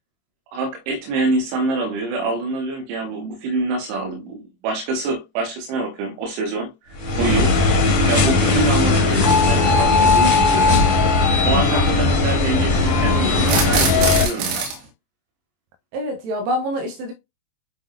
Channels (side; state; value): left; late; 22 ms